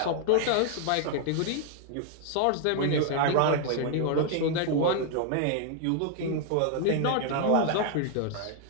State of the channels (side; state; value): both; different; correlation 0.00